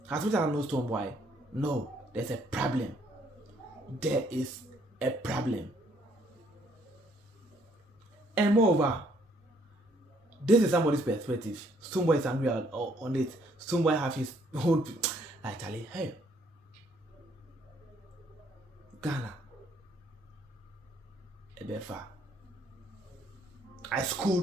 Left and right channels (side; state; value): both; normal; correlation 0.66